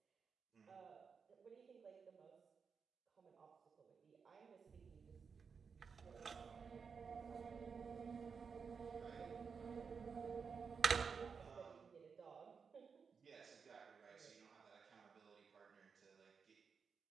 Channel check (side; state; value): left; quieter; 5.8 dB